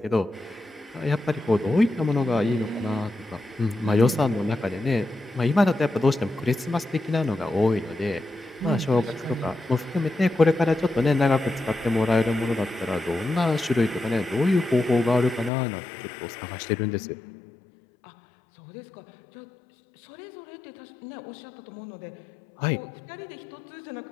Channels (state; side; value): drops out; right; at 15.5 s